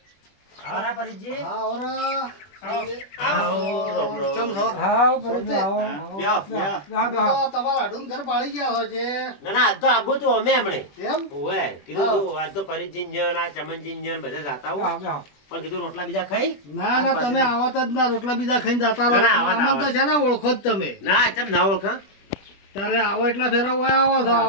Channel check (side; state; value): right; late; 20 ms